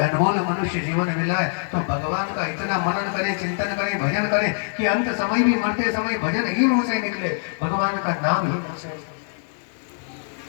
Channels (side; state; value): right; silent; 63 dB below the other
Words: अनमोल मनुष्य जीवन मिला है, तो भगवान का इतना मनन करें, चिंतन करें, भजन करें कि अंत समय भी, मरते समय भजन ही मुंह से निकले, भगवान का नाम ही मुंह से।